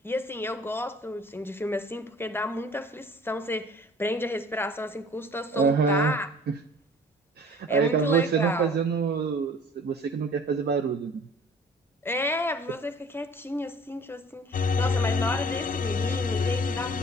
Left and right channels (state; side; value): normal; both; correlation 0.49